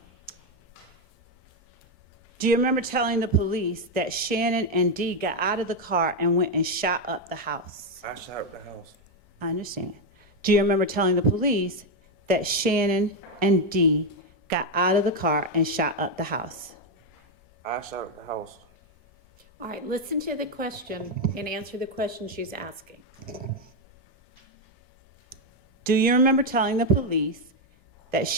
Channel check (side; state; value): both; normal; correlation 0.04